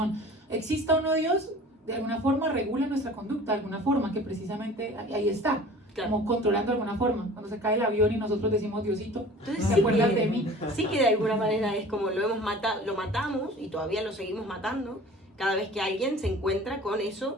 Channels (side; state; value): both; normal; correlation 0.44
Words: Exista o no Dios, de alguna forma regula nuestra conducta, de alguna forma, que precisamente ahí está. Claro. Como controlando de alguna forma, cuando se cae el avión y nosotros decimos Diosito, entonces, ¿te acuerdas de mí? Sí, que de alguna manera es como lo hemos matado, lo matamos y todavía lo seguimos matando cada vez que alguien se encuentra con